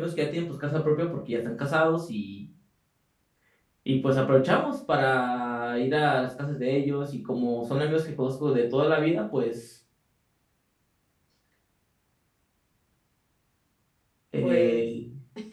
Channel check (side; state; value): both; identical; correlation 1.00